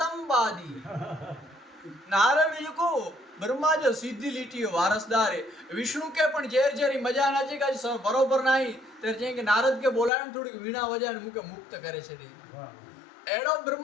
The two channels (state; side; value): drops out; right; at 10.1 s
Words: नारद जी को ब्रह्मा जो सीधी लीटी वारसदार है विष्णु के पण जेर जेरी मजा ना चे का बरोबर नहीं तेर जे के नारद के बोलाण थोड़ी वीणा वजाण मुके मुक्त करे छे एड़ो